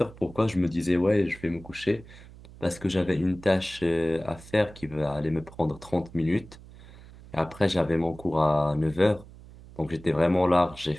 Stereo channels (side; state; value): right; noise; hum, 19 dB below the sound